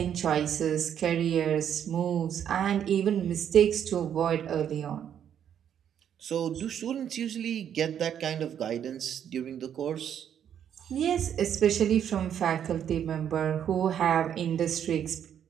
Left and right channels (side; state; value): left; quieter; 9.2 dB